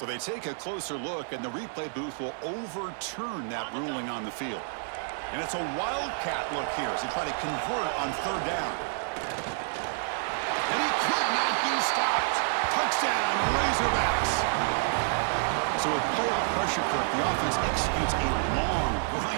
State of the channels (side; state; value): left; silent; digital silence